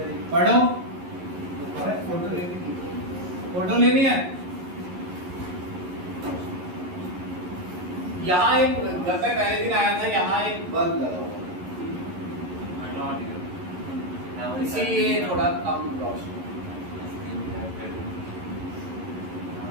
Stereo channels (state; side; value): late; left; 11 ms